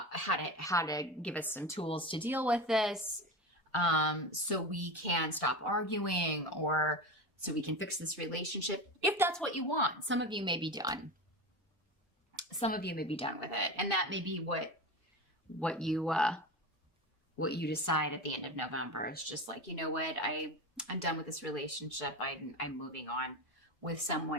to give us some tools to deal with this, so we can stop arguing, or so we can fix this relationship, if that's what you want. Some of you may be done. Some of you may be done with it, and that may be what you decide at the end of November. It's just like, you know what, I'm done with this relationship. I'm moving on with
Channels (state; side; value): normal; both; correlation 0.24